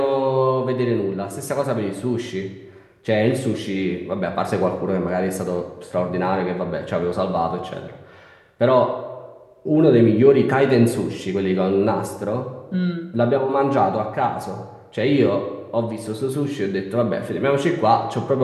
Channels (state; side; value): identical; both; correlation 1.00